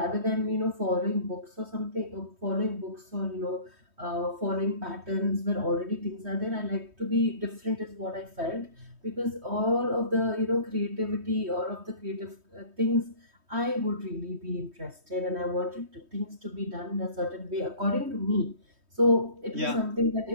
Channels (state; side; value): late; left; 3.2 ms